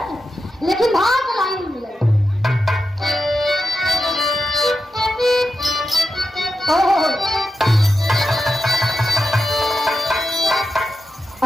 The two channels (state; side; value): normal; both; correlation 0.89